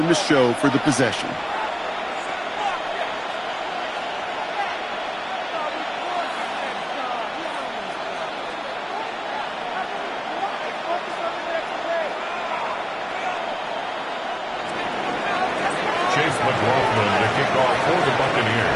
to show for the possession. Chase McLaughlin to kick off for the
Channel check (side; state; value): both; identical; correlation 1.00